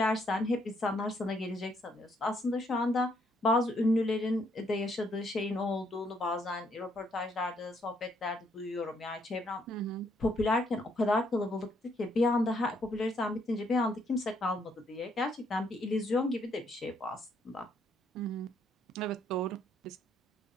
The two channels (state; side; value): normal; both; correlation 0.71